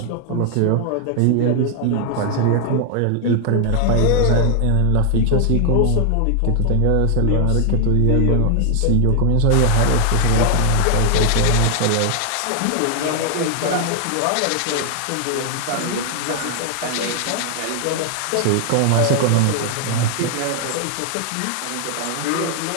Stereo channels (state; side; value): different; both; correlation 0.00